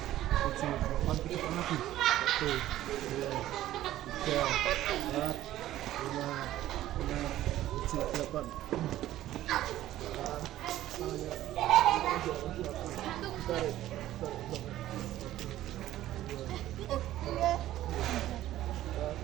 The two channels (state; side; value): quieter; left; 14.0 dB